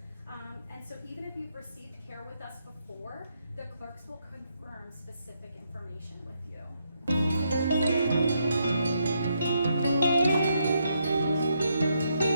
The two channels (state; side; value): inverted; both; correlation -0.78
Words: And so even if you've received care with us before, the clerks will confirm specific information with you.